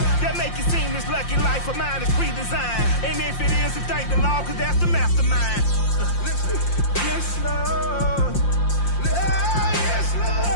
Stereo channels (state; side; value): late; right; 5.7 ms